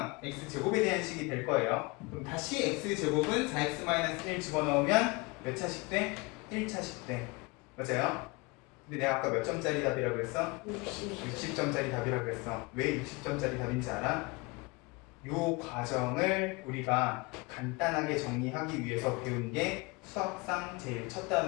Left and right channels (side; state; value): right; quieter; 25.9 dB